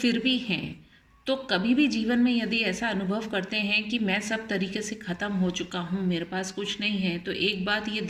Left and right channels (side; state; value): both; identical; correlation 1.00